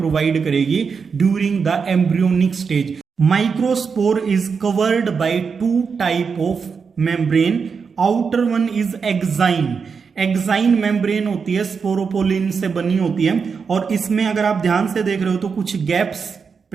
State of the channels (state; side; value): quieter; left; 5.7 dB